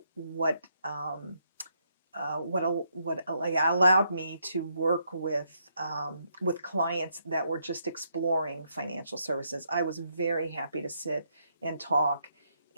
what like, allowed me to work with clients that were just exploring financial services. I was very happy to sit and talk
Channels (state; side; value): inverted; both; correlation -0.76